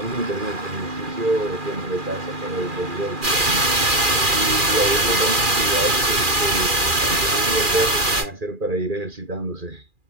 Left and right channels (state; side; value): late; left; 2.4 ms